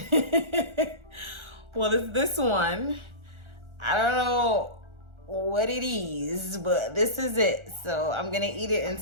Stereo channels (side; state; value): left; late; 1.4 ms